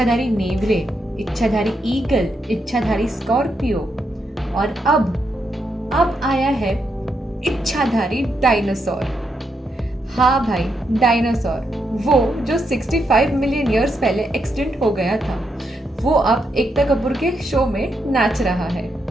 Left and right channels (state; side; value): normal; both; correlation 0.81